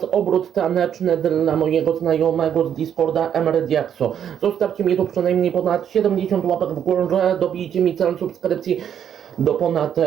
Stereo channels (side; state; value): left; quieter; 9.0 dB